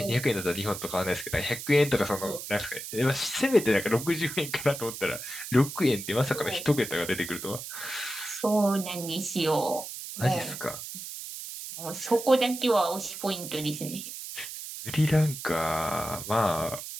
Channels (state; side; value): noise; right; hiss, 9 dB below the sound